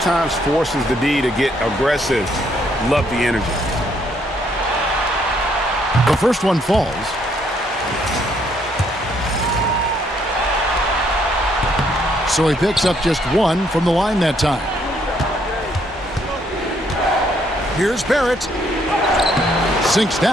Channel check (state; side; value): normal; both; correlation 0.69